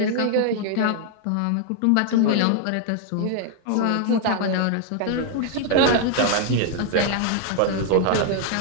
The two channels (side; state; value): both; different; correlation 0.00